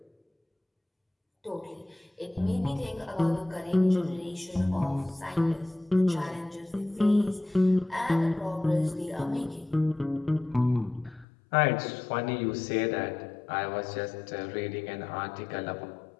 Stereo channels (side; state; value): right; drops out; at 11.2 s